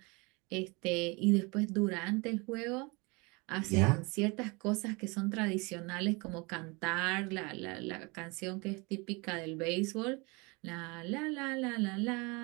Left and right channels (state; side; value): quieter; left; 27.7 dB